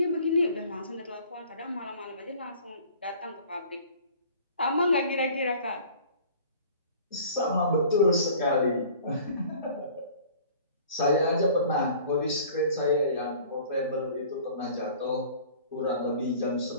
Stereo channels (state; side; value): inverted; both; correlation -0.48